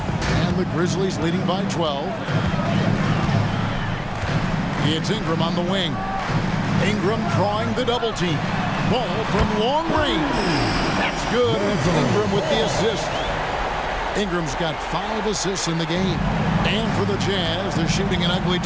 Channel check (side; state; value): both; identical; correlation 1.00